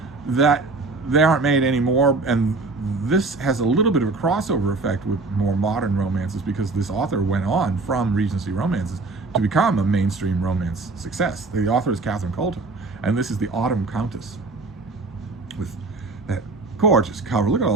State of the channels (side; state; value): left; quieter; 3.5 dB